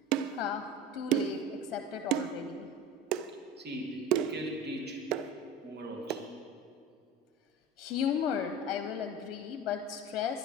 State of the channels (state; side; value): normal; both; correlation 0.32